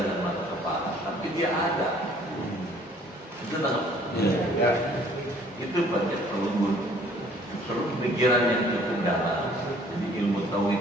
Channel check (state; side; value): normal; both; correlation 0.57